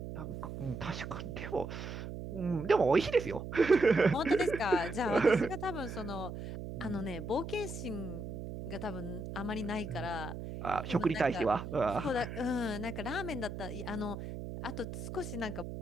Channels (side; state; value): right; noise; hum, 8 dB below the sound